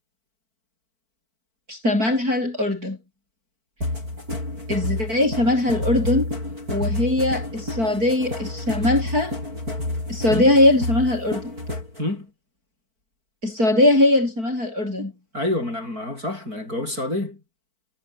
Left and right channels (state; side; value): late; left; 4.5 ms